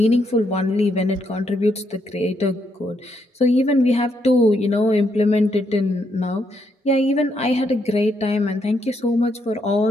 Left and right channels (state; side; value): normal; both; correlation 0.77